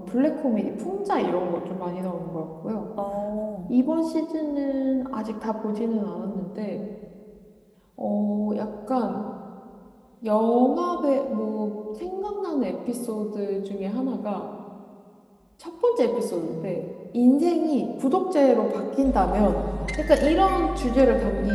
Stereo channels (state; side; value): identical; both; correlation 1.00